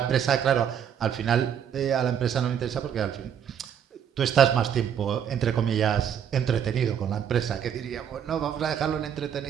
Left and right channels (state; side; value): quieter; left; 8.6 dB